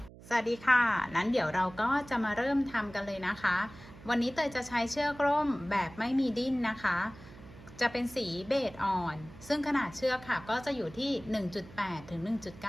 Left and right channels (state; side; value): noise; right; hum, 19 dB below the sound